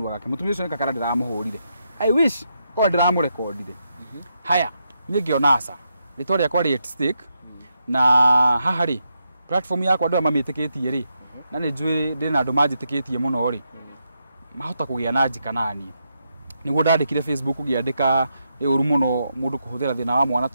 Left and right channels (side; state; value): both; inverted; correlation -0.82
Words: gake, mũtumia ũcio nĩ kakara ndĩramũhũrire, I wish korwo ndĩramũrekondire. Haya niĩ ngĩona aca rĩtwa rĩakwa rĩ at stake, na haha rĩ platform yakwa andũ mamĩtĩkĩtie rĩ, na nĩ njũĩ ndĩ na andũ manjĩtĩkĩtie mũno rĩ, mahota kũgĩa na njika naniĩ. Nĩguo ndandĩkire Facebook ngĩandĩka nĩ ũru mũno mũndũ kũhũthĩra thĩna wa mwana